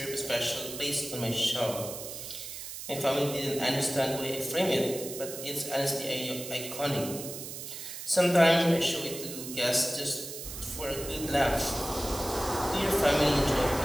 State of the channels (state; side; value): noise; right; hiss, 9 dB below the sound